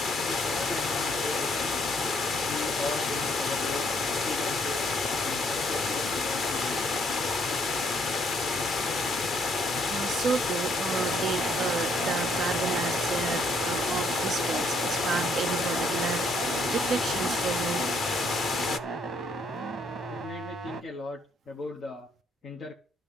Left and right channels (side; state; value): both; normal; correlation 0.69